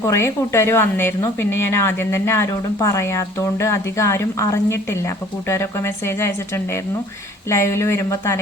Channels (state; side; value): normal; both; correlation 0.52